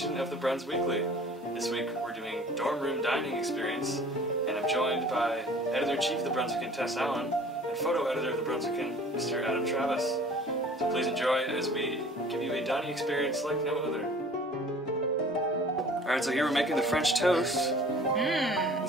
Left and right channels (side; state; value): both; normal; correlation 0.48